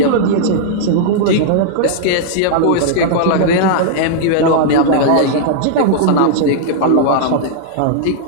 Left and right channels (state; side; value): different; both; correlation -0.01